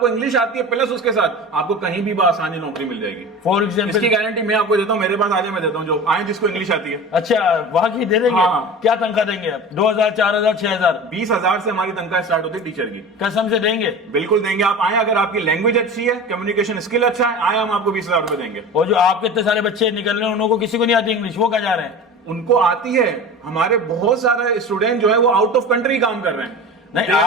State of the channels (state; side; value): normal; both; correlation 0.33